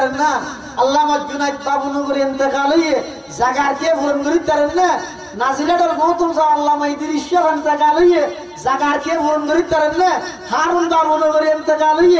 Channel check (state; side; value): identical; both; correlation 1.00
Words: না। আল্লামা জুনাইদ বাবুনগরী ইন্তেকাল হইয়ে জায়গার কে পূরণ করিতে পারেন না। নাজিরাটার মহতম সাহ আল্লামা ইদ্রিস শাহ ইন্তেকাল হইয়ে জায়গার কে পূরণ করিতে পারেন না। হারুন বাবুনগরী ইন্তেকাল